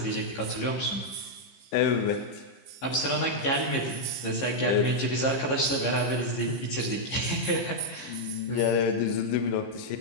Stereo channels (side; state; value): right; late; 15 ms